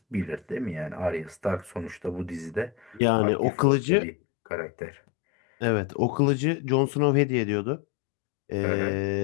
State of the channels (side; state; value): right; drops out; at 3.0 s